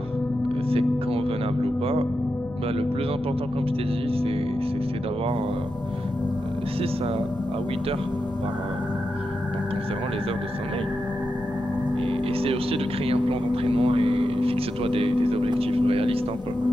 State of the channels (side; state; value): both; normal; correlation 0.88